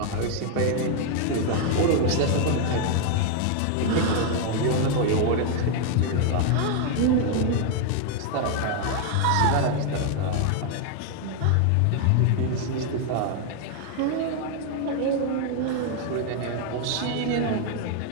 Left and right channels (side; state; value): both; different; correlation 0.00